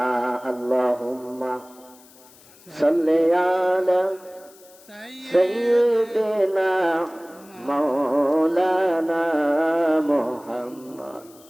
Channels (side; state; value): left; noise; hiss, 25 dB below the sound